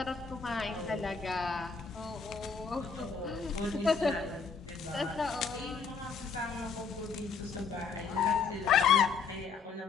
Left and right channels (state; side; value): quieter; right; 5.5 dB